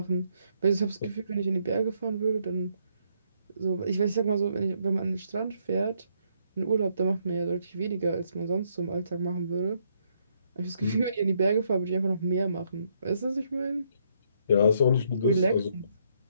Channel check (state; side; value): inverted; both; correlation -0.73